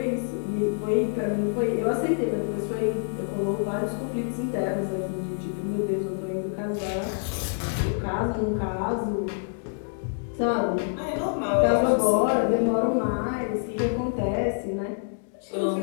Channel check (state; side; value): silent; right; digital silence